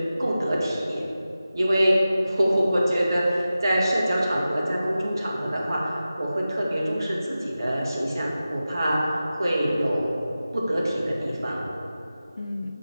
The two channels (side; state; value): both; inverted; correlation -0.94